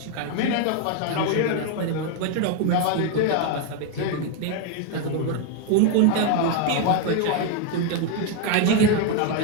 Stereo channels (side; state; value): both; different; correlation 0.01